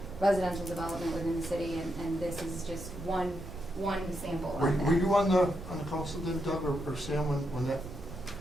residential development within the city, and this is just one sample of that. Were you on the council then, Doug, or Sam, when that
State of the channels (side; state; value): right; noise; rumble, 12 dB below the sound